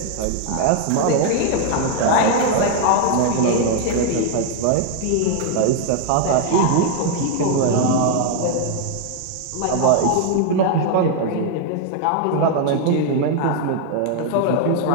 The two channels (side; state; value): both; different; correlation 0.00